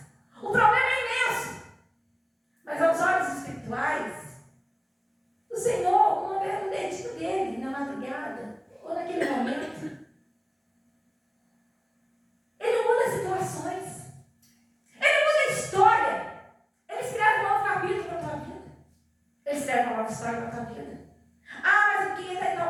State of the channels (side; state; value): both; identical; correlation 1.00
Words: o problema é imenso. Mas aos olhos espirituais, o Senhor não vê um dedinho dele na madrugada ou naquele momento. Ele muda situações. Ele muda a história. Ele escreve um novo capítulo para a tua vida. Ele escreve uma nova história para a tua vida. Ah, mas eu queria estar em